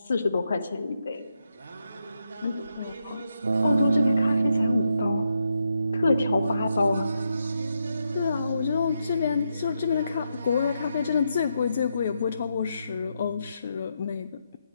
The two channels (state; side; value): inverted; both; correlation -0.83